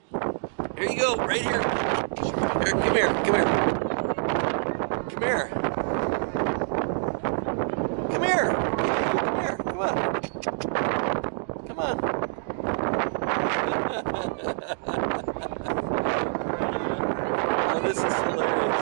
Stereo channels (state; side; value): silent; left; digital silence